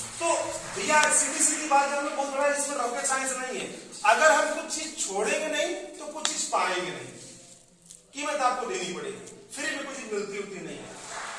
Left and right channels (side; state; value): both; identical; correlation 1.00